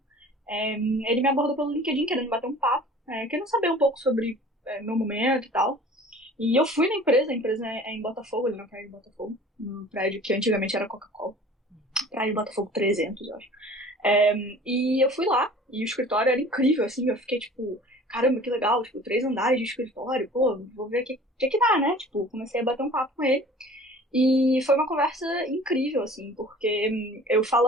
ele me abordou pelo LinkedIn, querendo bater um papo, querendo saber um pouco sobre meu momento e tal. E eu fui na empresa, a empresa é em Botafogo, ali na praia de Botafogo, num prédio que antigamente era Coca-Cola, praia de Botafogo 300, eu acho. E eu fui lá, e o escritório era incrível, assim, eu fiquei tipo, caramba, que legal, tipo, 3 andares de escritório, pô, vou ver o que dá, né? Tipo, comecei a bater um papo com ele. E foi uma conversa incrível, assim, porque eu falo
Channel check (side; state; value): both; normal; correlation 0.45